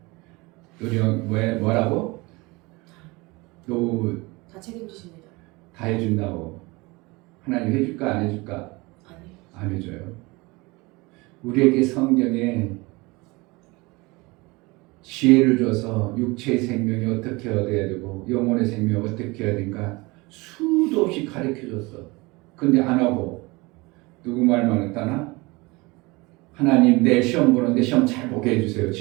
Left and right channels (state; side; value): quieter; left; 24.2 dB